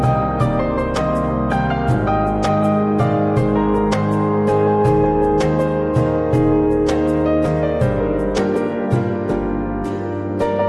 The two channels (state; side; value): identical; both; correlation 1.00